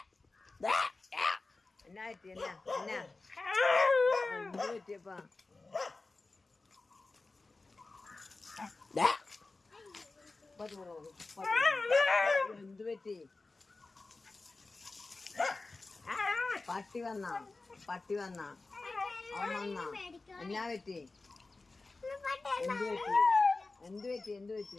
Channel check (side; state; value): right; quieter; 3.5 dB